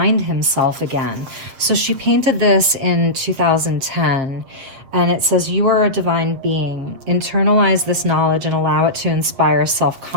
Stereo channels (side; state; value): left; late; 8.1 ms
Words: himself again. So she painted this in 2010. And it says, you are a divine being. Internalize this knowledge and allow it to inspire